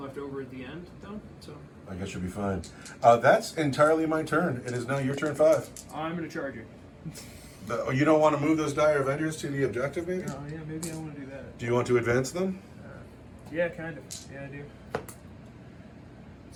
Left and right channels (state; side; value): identical; both; correlation 1.00